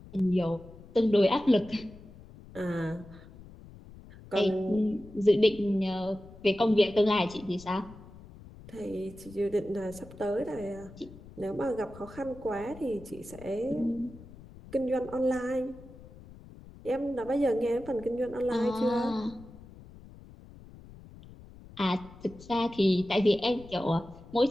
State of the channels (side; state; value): left; noise; rumble, 19 dB below the sound